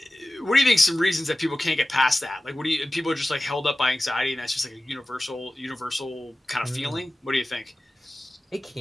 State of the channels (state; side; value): normal; both; correlation 0.96